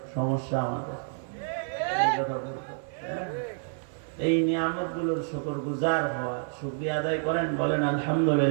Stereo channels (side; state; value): left; silent; 59 dB below the other